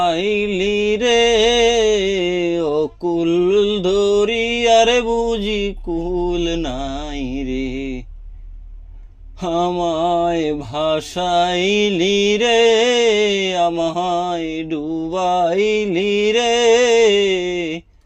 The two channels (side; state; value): both; identical; correlation 1.00